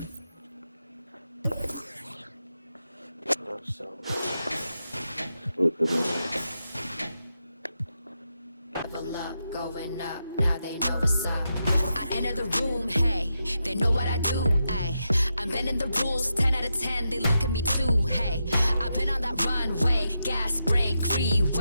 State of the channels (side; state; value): both; inverted; correlation -0.87